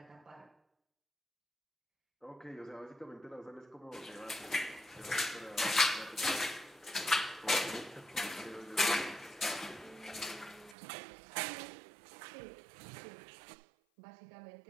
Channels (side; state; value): left; drops out; at 10.8 s